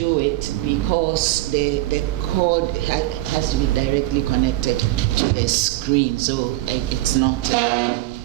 it because the cord has to be directly connected to the screen, so it's not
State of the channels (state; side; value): quieter; left; 17.1 dB